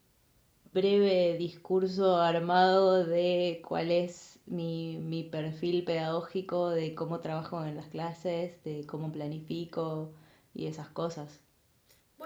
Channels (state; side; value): identical; both; correlation 1.00